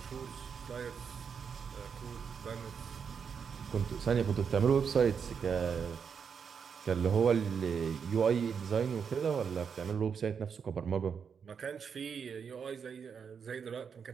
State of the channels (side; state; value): left; quieter; 6.6 dB